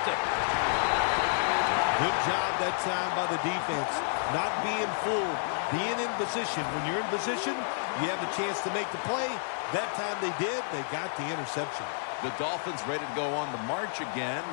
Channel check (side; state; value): right; silent; 58 dB below the other